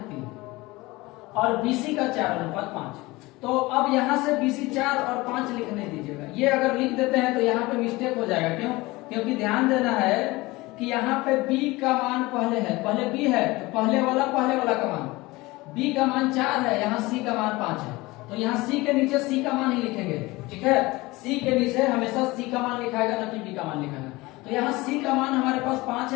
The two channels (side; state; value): right; quieter; 21.4 dB